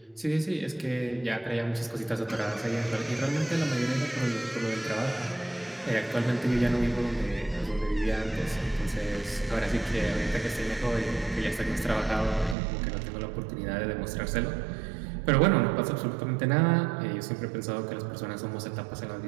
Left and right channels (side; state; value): left; drops out; at 12.6 s